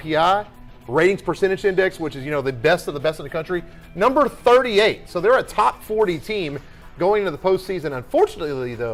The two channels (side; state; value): both; identical; correlation 1.00